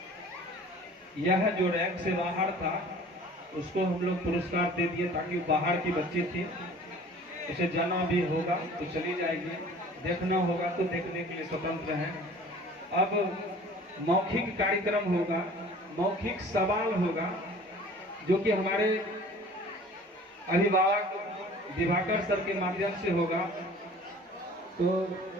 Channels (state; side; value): normal; both; correlation 0.47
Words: यह जो रैंक से बाहर था उसको हम लोग पुरस्कार दे दिए, ताकि बाहर की बच्ची थी, उसे जाना भी होगा तो चली जाएगी, देखना होगा तो देखने के लिए स्वतंत्र हैं। अब मौखिक कार्यक्रम होगा, मौखिक सवाल होगा, जो कि हमारे अभिभावक दिवाकर सर के माध्यम से होगा। तो